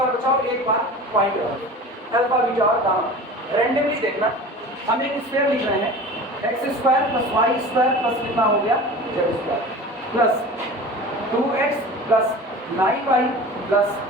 बचाओ, एक बार पॉइंट रखो। अल्फा बीटा और गामा रैंडमली देखना। हम एक स्क्वायर लिख रहे हैं x square plus Y square plus कितना हो गया z square plus 2x plus 9y plus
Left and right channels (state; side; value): normal; both; correlation 0.37